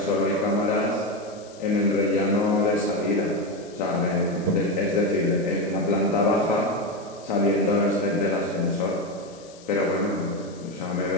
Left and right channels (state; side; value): noise; left; hiss, 23 dB below the sound